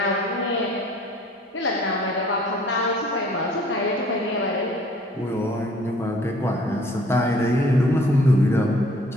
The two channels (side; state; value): both; normal; correlation 0.55